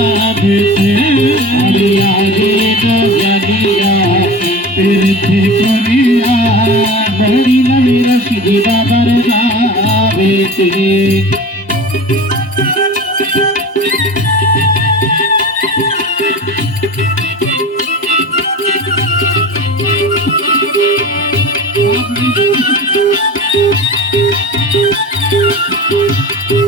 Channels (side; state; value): both; normal; correlation 0.33